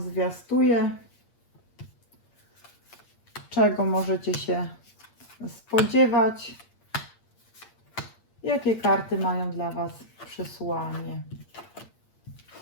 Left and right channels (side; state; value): right; late; 8.6 ms